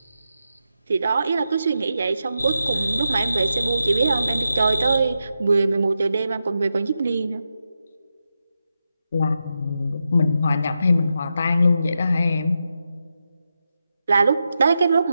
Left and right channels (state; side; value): inverted; both; correlation -0.87